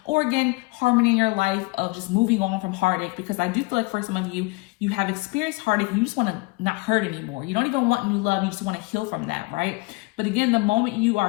Or again, harmony in your life of just moving on from heartache, because I do feel like for some of you, you have experienced heartache and you just want to not hurt anymore. You don't even want new love. You just want to heal from that, right? But again, the moment you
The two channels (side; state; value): right; quieter; 24.6 dB